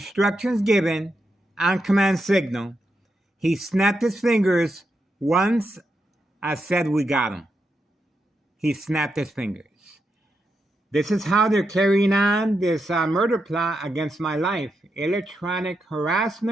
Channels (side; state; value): both; normal; correlation 0.84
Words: given on command signal. He snapped his fingers once I said we got him. He snapped his fingers. This is how they're carrying on this murder plot against my life. Electronic